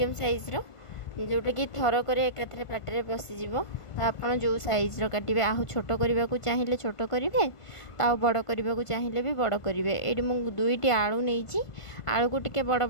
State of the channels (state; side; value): late; right; 1.5 ms